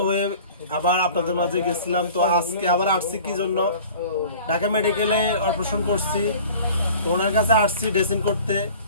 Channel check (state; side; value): inverted; both; correlation -0.44